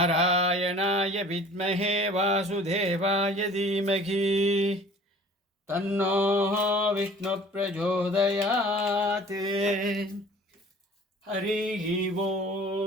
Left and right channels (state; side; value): normal; both; correlation 0.48